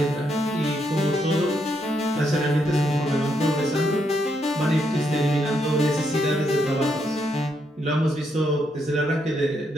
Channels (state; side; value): normal; both; correlation 0.77